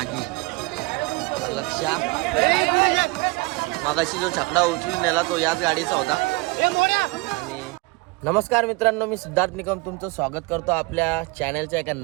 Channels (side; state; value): left; quieter; 25.5 dB